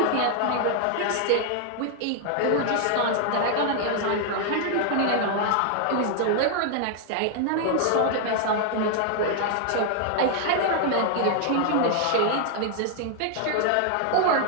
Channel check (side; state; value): both; different; correlation 0.00